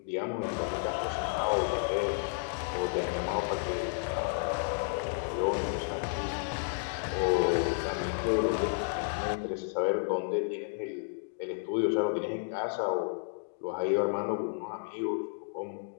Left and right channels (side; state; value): right; silent; digital silence